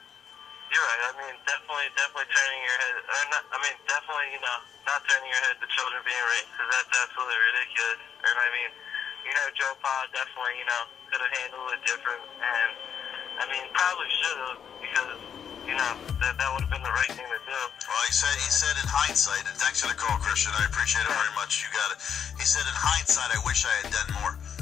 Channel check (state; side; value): quieter; right; 7.9 dB